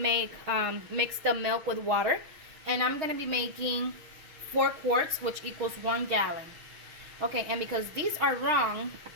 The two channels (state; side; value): late; left; 6.4 ms